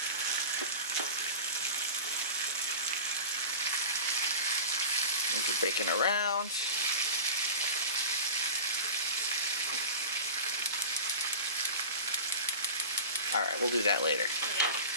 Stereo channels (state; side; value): inverted; both; correlation -0.32